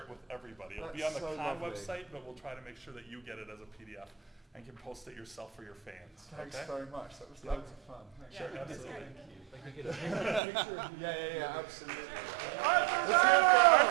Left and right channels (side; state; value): left; drops out; at 10.4 s